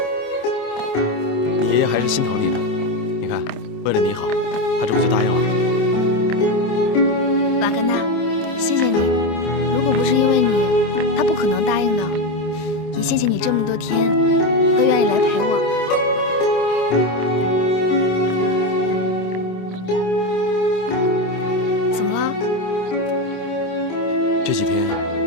你爷爷还是心疼你的。你看，为了你好，他这不就答应了？瓦格纳，谢谢你。如果不是因为你，他不可能答应的。也谢谢你这么多天都愿意来陪我。怎么了？这几天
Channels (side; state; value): right; late; 26 ms